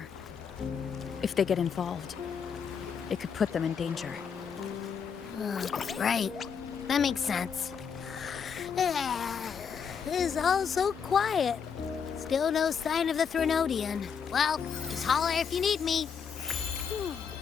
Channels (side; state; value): right; quieter; 6.8 dB